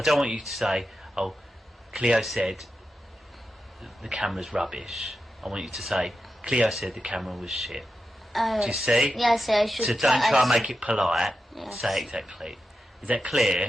don't want you to say, "Oh, Cleo said the camera's rubbish." I want you to say, "Cleo said the camera was shit." Do you see? Yes, I should. So don't try and make it polite. Yes. Say it exactly. Is that clear?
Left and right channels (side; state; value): both; normal; correlation 0.90